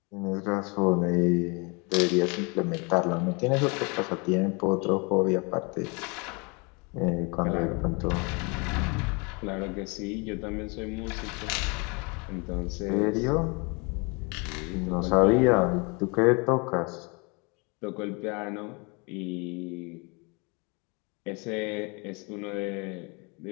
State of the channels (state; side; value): quieter; right; 30.6 dB